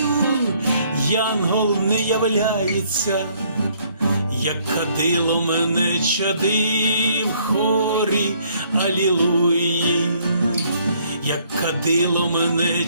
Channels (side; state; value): both; inverted; correlation -0.64